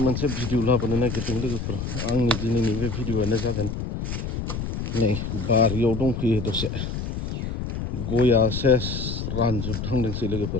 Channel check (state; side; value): noise; left; rumble, 4 dB below the sound